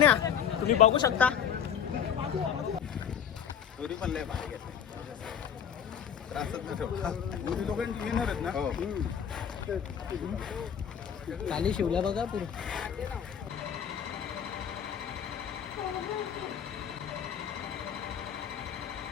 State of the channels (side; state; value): right; quieter; 8.3 dB